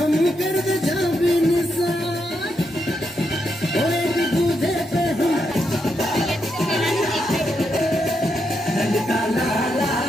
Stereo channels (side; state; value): both; normal; correlation 0.82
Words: कर दे जा भी निशान और एक दूजे पे हम ललका लाला